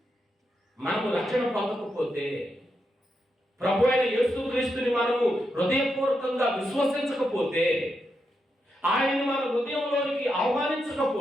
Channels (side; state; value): both; normal; correlation 0.84